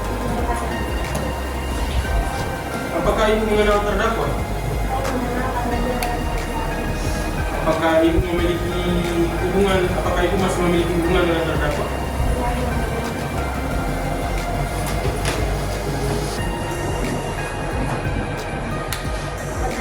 Apakah Ibu mengenal terdakwa? Apakah Ibu memiliki hubungan? Apakah Ibu masih memiliki hubungan dengan terdakwa?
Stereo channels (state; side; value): identical; both; correlation 1.00